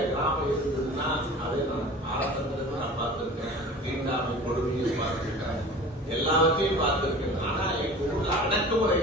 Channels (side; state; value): both; normal; correlation 0.40